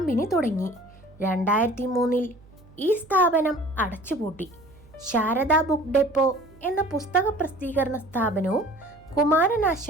തുടങ്ങി. 2003 ഈ സ്ഥാപനം അടച്ചുപൂട്ടി. ശാരദ ബുക്ക് ഡെപ്പോ എന്ന പുസ്തക പ്രസിദ്ധീകരണ സ്ഥാപനവും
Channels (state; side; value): noise; right; hum, 25 dB below the sound